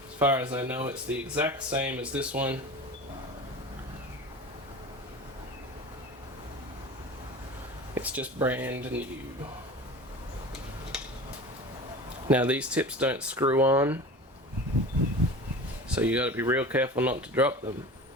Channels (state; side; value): normal; both; correlation 0.34